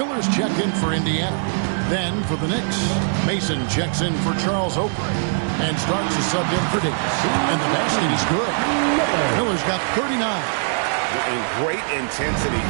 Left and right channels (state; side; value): silent; left; digital silence